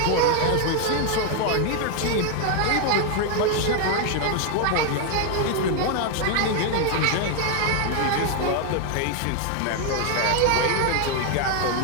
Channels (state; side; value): different; both; correlation 0.00